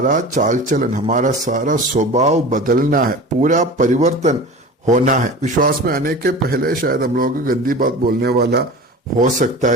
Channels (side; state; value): both; normal; correlation 0.35